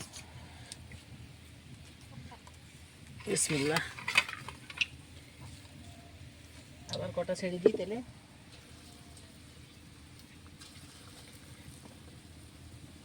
বিসমিল্লাহ। আবার কটা ছেড়ে দিই তেলে।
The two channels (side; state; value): both; identical; correlation 1.00